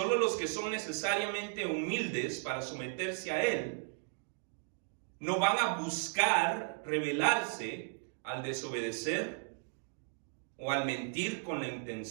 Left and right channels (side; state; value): left; silent; 54 dB below the other